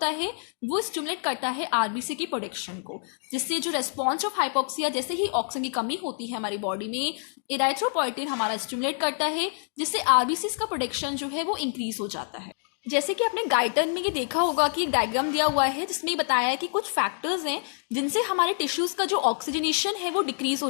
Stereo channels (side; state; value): right; silent; 60 dB below the other